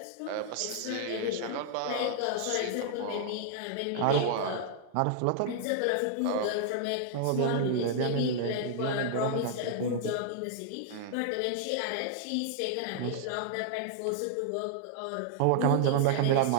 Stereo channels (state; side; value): different; both; correlation -0.01